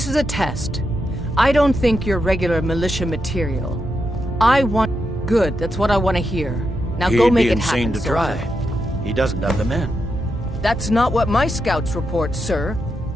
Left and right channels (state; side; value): normal; both; correlation 0.85